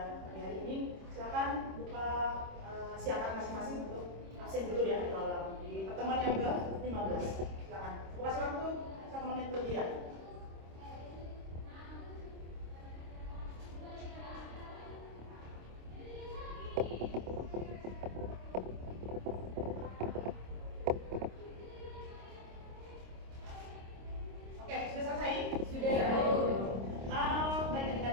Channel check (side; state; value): left; late; 26 ms